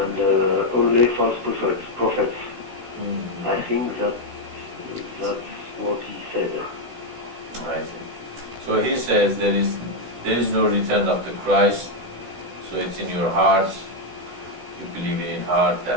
only false prophets. I think that's what he said. I see. So he says there is no return of the Christ, so it's in your heart. You believe it in heart,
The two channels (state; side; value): late; left; 16 ms